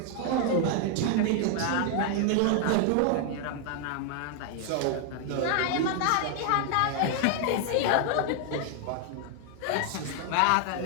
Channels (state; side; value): different; both; correlation 0.00